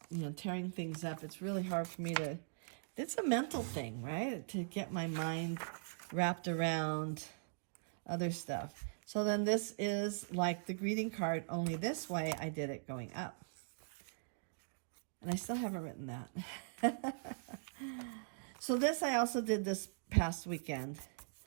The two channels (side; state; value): left; silent; digital silence